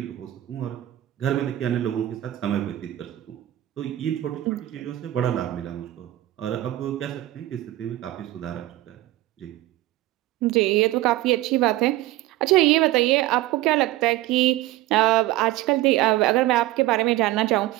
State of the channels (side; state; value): left; quieter; 15.7 dB